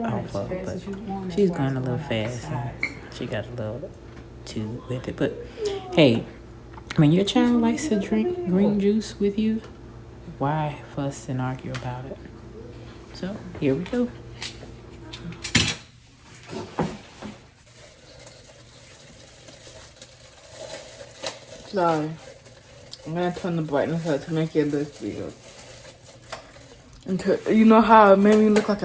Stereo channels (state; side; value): identical; both; correlation 1.00